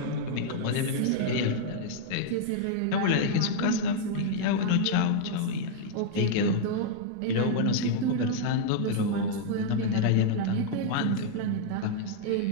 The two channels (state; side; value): different; both; correlation -0.01